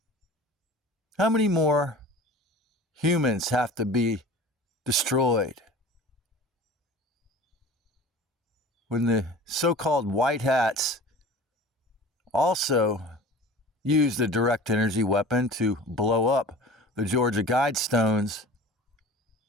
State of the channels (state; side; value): normal; both; correlation 0.40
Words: How many more humans have to be destroyed when the so-called white hats also used a direct energy weapon to blow up the Georgia Guidestones?